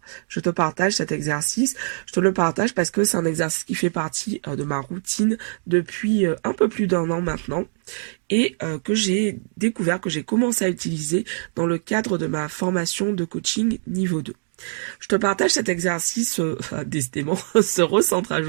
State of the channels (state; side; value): silent; left; digital silence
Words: je te partage cet exercice. Je te le partage parce que c'est un exercice qui fait partie de ma routine depuis un peu plus d'un an maintenant et que j'ai découvert, que j'ai commencé à utiliser dans le cadre de ma formation de coaching niveau 2. Je te partage cet exercice, décidément, ce recentrage